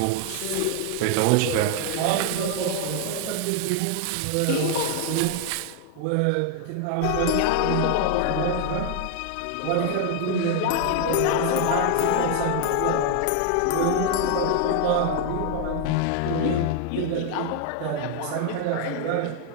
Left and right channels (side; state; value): both; different; correlation 0.00